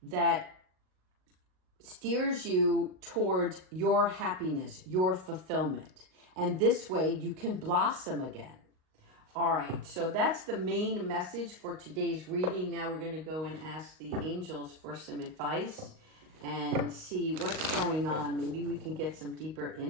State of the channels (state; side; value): late; left; 38 ms